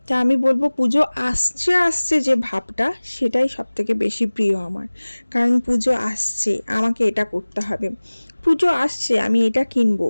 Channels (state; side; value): inverted; both; correlation -1.00